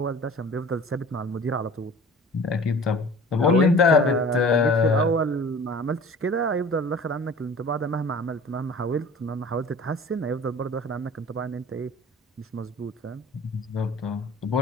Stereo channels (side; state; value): both; normal; correlation 0.44